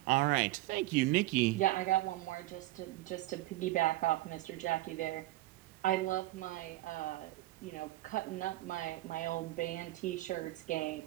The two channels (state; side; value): quieter; left; 17.5 dB